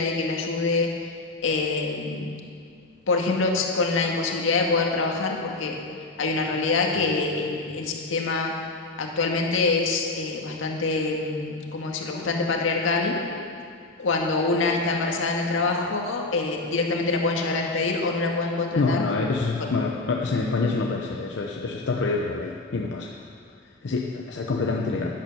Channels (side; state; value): right; quieter; 3.2 dB